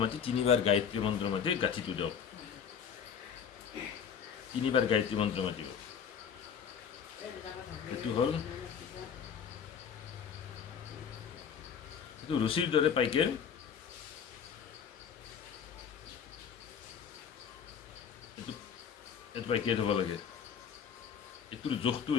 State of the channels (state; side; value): quieter; right; 7.3 dB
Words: মাতি 3বাৰ গায়ত্ৰী মন্ত্ৰ মাতি গাঁঠিটো দিয়ক 3বাৰ গায়ত্ৰী মন্ত্ৰ মাতিব এইটো হ'ল এইটো ৰছীৰ দৰে পাইকে এইটো পাইকে থ'ব লাগে এইটোৰ জোখটো